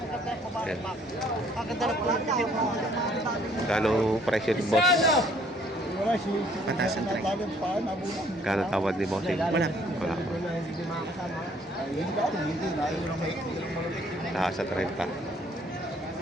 Kano presyo ni boss? Patasan tayo. Kano tawad ni boss? Wala. Wala. Taas sa 30.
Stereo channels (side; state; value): both; normal; correlation 0.61